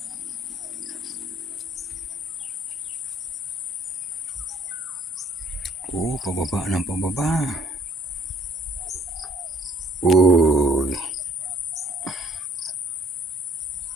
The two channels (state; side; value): normal; both; correlation 0.63